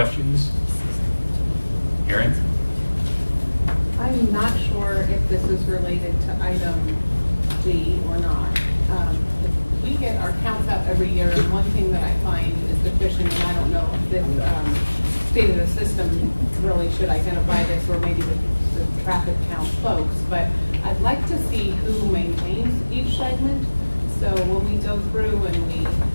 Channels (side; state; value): both; inverted; correlation -1.00